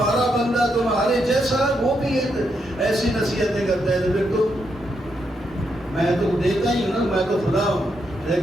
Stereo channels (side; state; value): both; normal; correlation 0.80